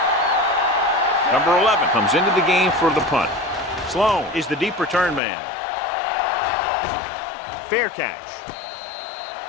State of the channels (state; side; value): drops out; right; at 5.2 s